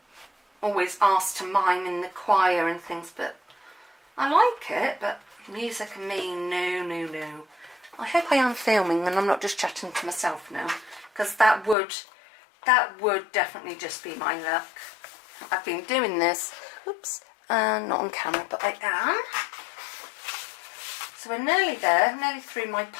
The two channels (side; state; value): right; drops out; at 11.8 s